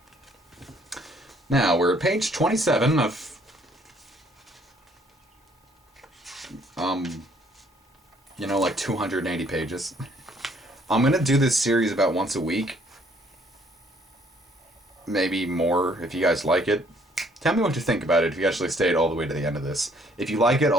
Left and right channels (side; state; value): both; normal; correlation 0.64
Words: Now, we're at page 27 of like 280 pages. I'm going to do this series about once a week. Maybe more if you guys like it. Tell me what you think about it if you actually stayed all the way to the end of this. If you like it,